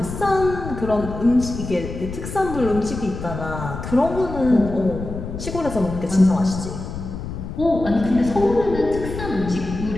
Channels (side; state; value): left; noise; rumble, 8 dB below the sound